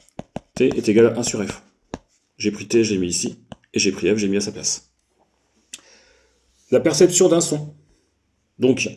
T est égal à 1 sur F. J'ai pris T, je l'ai mis ici. Et j'ai pris F, j'ai mis à sa place. La perception d'un son. Donc,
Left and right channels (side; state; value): both; identical; correlation 1.00